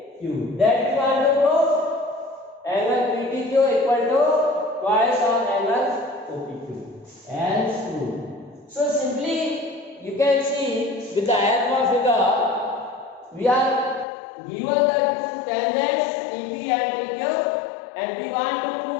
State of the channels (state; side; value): drops out; right; at 14.1 s